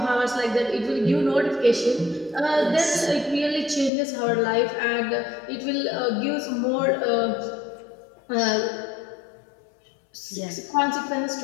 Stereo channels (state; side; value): drops out; right; at 3.9 s